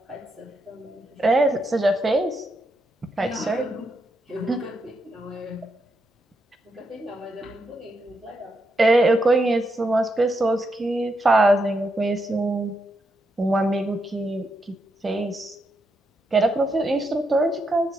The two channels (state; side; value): normal; both; correlation 0.82